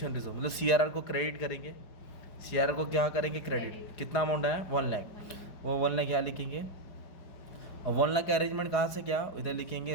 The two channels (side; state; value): right; late; 4.8 ms